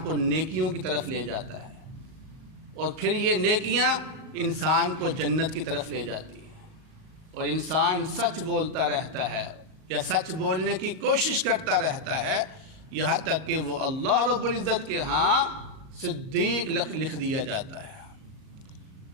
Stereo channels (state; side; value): late; left; 38 ms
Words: کو نیکیوں کی طرف لے جاتا ہے۔ اور پھر یہ نیکیاں انسان کو جنت کی طرف لے جاتی ہیں، اور انسان سچ بولتا رہتا ہے یا سچ بولنے کی کوشش کرتا رہتا ہے یہاں تک کہ وہ اللہ رب العزت کے ہاں صدیق لکھ دیا جاتا ہے۔